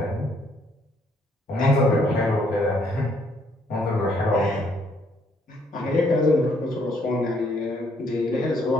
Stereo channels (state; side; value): normal; both; correlation 0.68